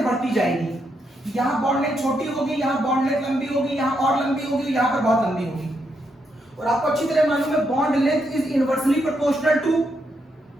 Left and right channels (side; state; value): both; normal; correlation 0.79